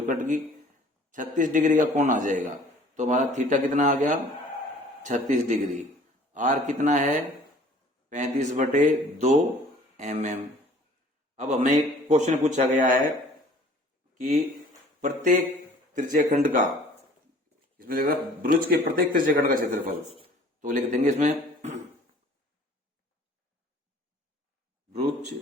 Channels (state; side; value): normal; both; correlation 0.51